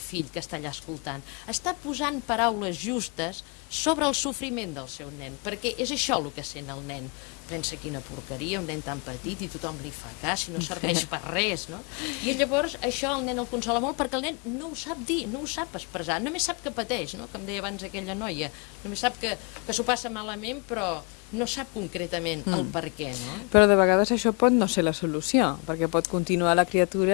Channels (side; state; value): right; quieter; 33.4 dB